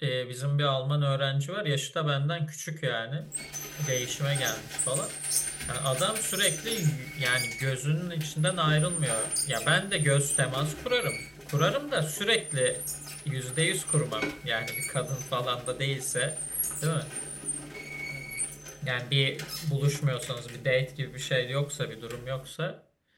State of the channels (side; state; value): both; identical; correlation 1.00